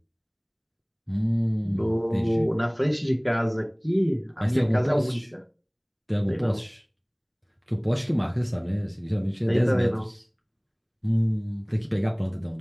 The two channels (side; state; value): both; identical; correlation 1.00